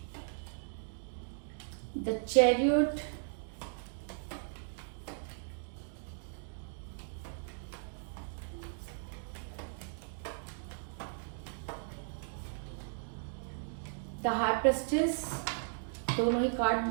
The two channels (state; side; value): silent; left; digital silence